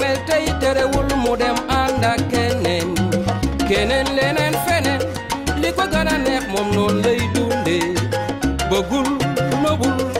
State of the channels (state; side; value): identical; both; correlation 1.00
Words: tay terewul mudem anda kenen lenen fenen liko gëna neex mom non lay dundé bëggul nobul